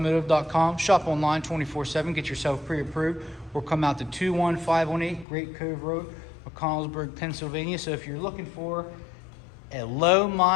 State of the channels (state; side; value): drops out; right; at 5.2 s